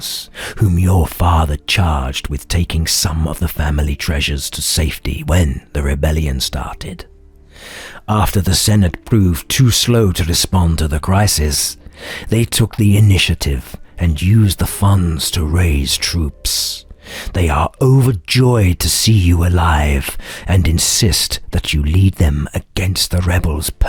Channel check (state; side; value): identical; both; correlation 1.00